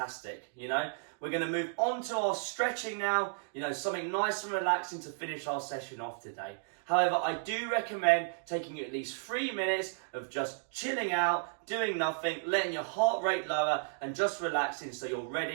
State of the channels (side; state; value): left; silent; digital silence